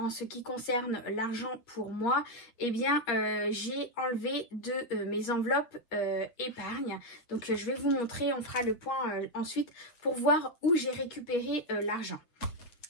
ce qui concerne l'argent pour moi, j'ai enlevé de mes enveloppes épargne. Donc je vais vous montrer, on fera le point ensuite pour voir où j'ai récupéré l'argent.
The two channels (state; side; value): late; right; 8.0 ms